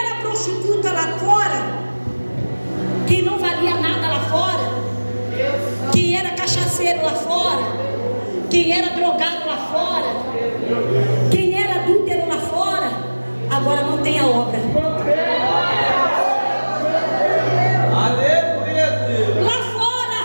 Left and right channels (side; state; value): both; inverted; correlation -1.00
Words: prostituta lá fora, quem não valia nada lá fora, quem era cachaceiro lá fora, quem era drogado lá fora, quem era adúltero lá fora, agora não tem a obra. Lá fora